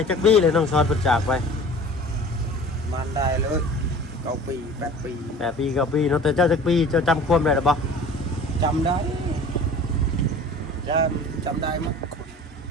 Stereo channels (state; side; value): normal; both; correlation 0.43